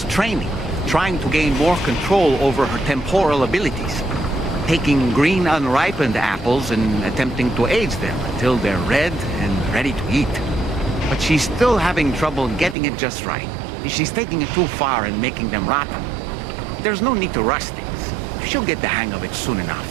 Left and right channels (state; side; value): drops out; left; at 12.8 s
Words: training, trying to gain more control over her temporal abilities. Taking green unripened apples and attempting to age them until they're red and ready to eat. But she's still having trouble getting it just right. She's taking it too far and making them rotten. There's no need to rush things. She'll get the hang of it soon